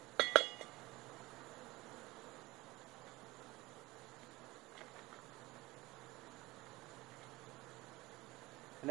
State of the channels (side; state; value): left; quieter; 20.5 dB